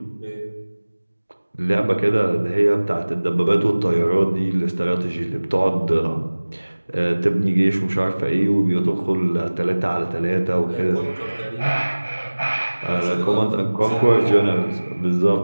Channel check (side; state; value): both; inverted; correlation -1.00